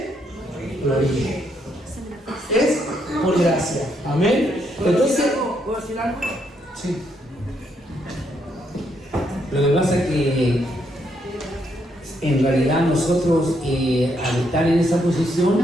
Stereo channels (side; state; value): both; normal; correlation 0.76